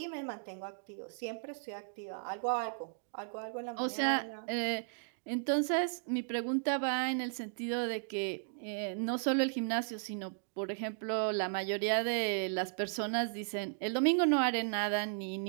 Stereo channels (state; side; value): silent; left; digital silence